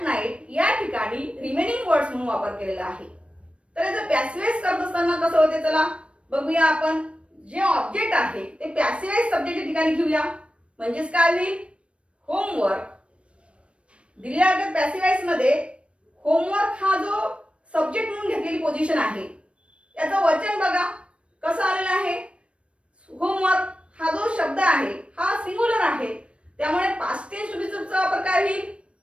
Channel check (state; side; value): late; left; 0.060 ms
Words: नाईट या ठिकाणी रिमेनिंग वर्ड्स म्हणून वापर केलेला आहे. तर याचं पॅसिव्ह वॉइस करत असताना कसं होते चला बघूया आपण. जे ऑब्जेक्ट आहे ते पॅसिव्ह वॉइस सब्जेक्टच्या ठिकाणी घेऊया, म्हणजेच काय होईल, होमवर्क. दिलेल्या पॅसिव्ह वॉइस मध्ये होमवर्क हा जो सब्जेक्ट म्हणून घेतलेली पोझिशन आहे याचं वचन बघा कसं आलेलं आहे. होमवर्क हा जो शब्द आहे हा सिंग्युलर आहे, त्यामुळे पास्ट टेन्स टू बी चा वापर काय होईल,